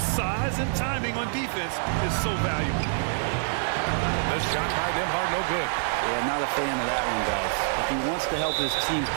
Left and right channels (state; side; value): silent; left; digital silence